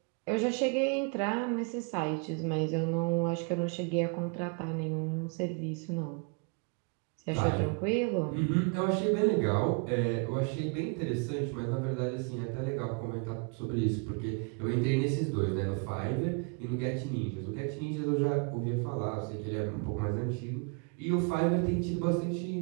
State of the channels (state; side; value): quieter; left; 34.5 dB